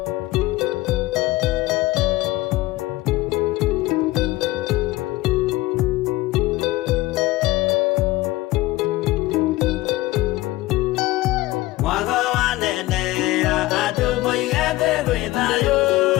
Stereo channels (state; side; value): quieter; right; 18.3 dB